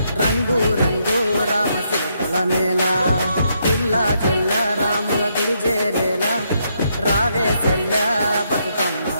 రంగు రంగు రామశిల్పల మేళ. పిల్లా జల్ల రాముల గుడి చేరేలా, రావే సెల్ల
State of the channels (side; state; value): both; inverted; correlation -0.76